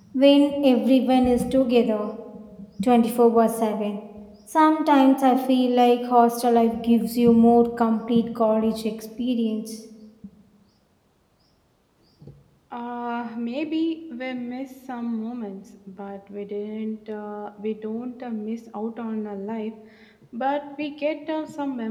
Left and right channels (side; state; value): both; identical; correlation 1.00